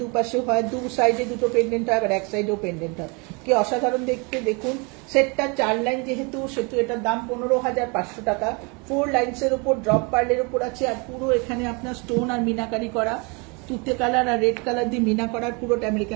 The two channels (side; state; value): left; quieter; 31.0 dB